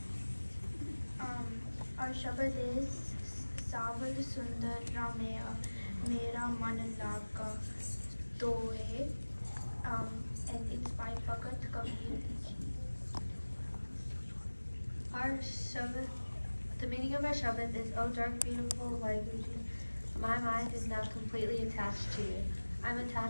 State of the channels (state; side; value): inverted; both; correlation -1.00